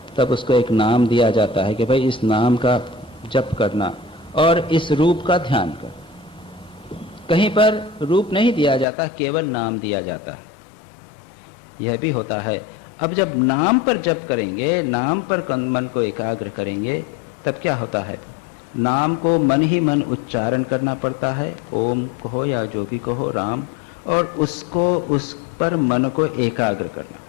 तब उसको एक नाम दिया जाता है कि भाई इस नाम का जप करना और इस रूप का ध्यान कर। कहीं पर रूप नहीं दिया जाता, केवल नाम दिया जाता है। यह भी होता है। अब जब नाम पर जप करेंगे, नाम पर मन को एकाग्र करेंगे, तब क्या होता है, नाम को मन ही मन उच्चारण करना पड़ता है। ओम कहो या जो भी कहो, राम, और उसको उस पर मन को एकाग्र करना।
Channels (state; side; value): drops out; right; at 8.8 s